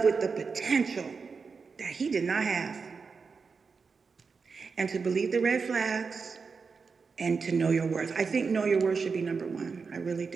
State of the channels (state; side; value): quieter; left; 5.1 dB